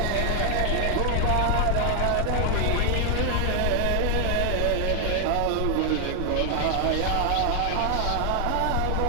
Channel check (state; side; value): different; both; correlation 0.00